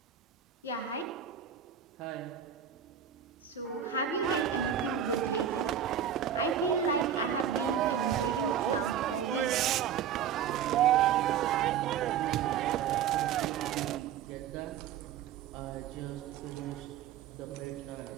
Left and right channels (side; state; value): left; quieter; 8.8 dB